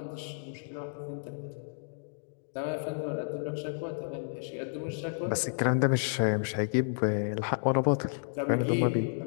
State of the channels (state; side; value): silent; right; digital silence